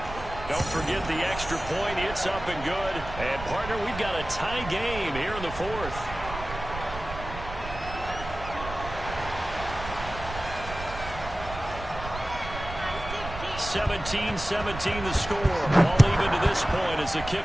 Don't forget the extra point. It's up and good. And, partner, we've got a tie game here in the 4th. (17-17) the score. All even to this point as the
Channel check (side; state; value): right; noise; rumble, 10 dB below the sound